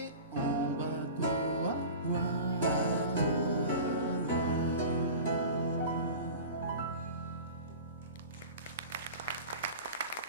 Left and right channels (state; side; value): inverted; both; correlation -0.36